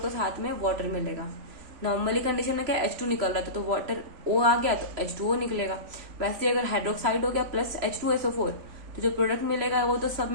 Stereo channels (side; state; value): left; late; 3.0 ms